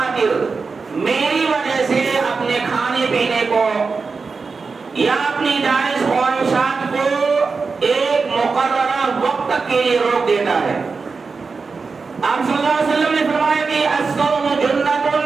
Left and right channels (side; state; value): left; quieter; 4.6 dB